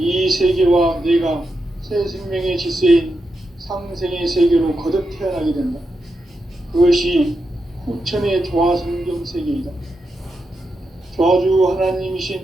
세계와 내가 새 생명의 질서인 상생의 세계로 거듭 태어나게 된다. 그것이 후천의 조화성경 세계이다. 조화주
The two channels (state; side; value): normal; both; correlation 0.87